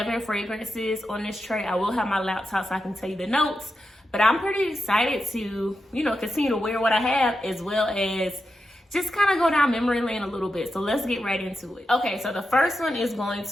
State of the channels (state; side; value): normal; both; correlation 0.88